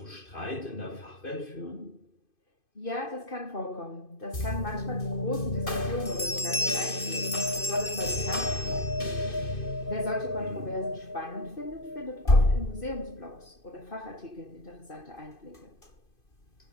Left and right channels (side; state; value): right; late; 2.5 ms